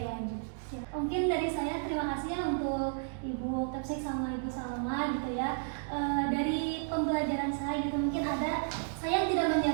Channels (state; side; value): silent; left; digital silence